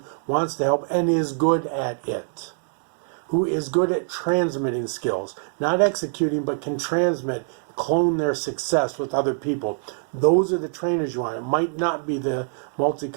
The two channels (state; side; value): silent; left; digital silence